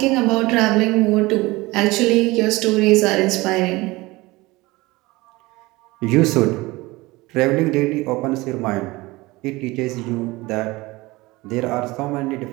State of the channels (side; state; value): left; quieter; 21.3 dB